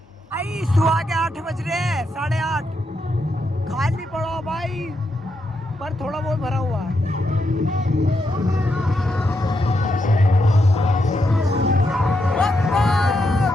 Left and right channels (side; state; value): both; normal; correlation 0.82